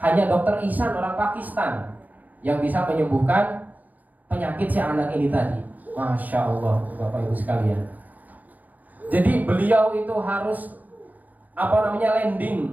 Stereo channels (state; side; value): late; left; 0.082 ms